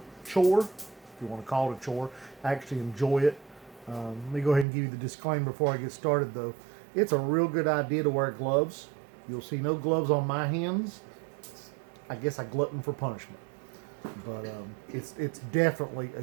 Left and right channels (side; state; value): left; drops out; at 4.7 s